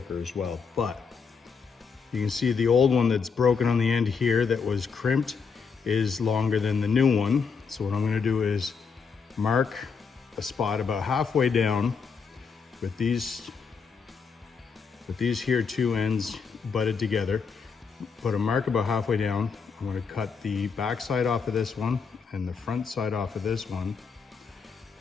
as well, but you can see the old one that's broken on the end here that was crimped is longer than the new one. So what I'm going to do is mark a spot about halfway down with these here two ends butted together. Put a mark about halfway down. I'm going to cut the back side off of this one and the front side off of this one,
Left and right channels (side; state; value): right; quieter; 5.6 dB